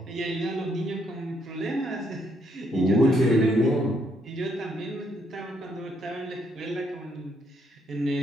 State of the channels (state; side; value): normal; both; correlation 0.72